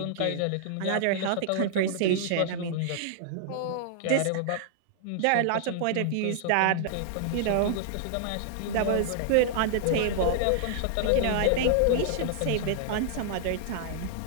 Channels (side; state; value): both; different; correlation -0.01